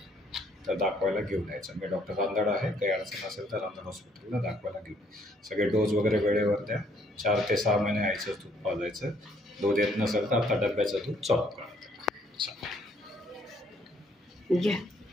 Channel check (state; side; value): normal; both; correlation 0.66